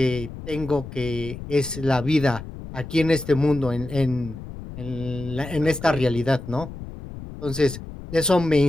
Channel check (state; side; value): noise; left; rumble, 12 dB below the sound